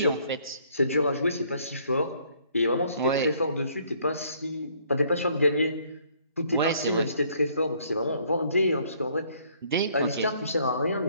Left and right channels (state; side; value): inverted; both; correlation -0.63